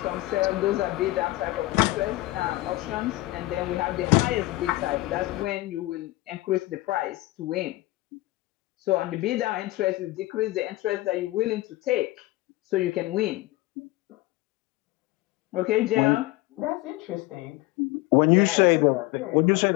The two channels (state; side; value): quieter; right; 19.0 dB